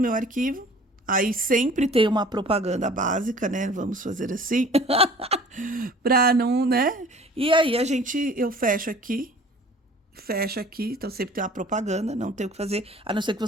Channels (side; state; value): both; normal; correlation 0.48